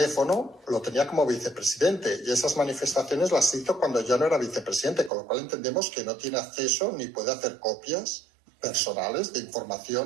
lo tenía como vicepresidente, y esas manifestaciones las hizo cuando ya no era vicepresidente, con lo cual entendemos que no tiene acceso ni puede hacer copias personales de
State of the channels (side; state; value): left; drops out; at 5.1 s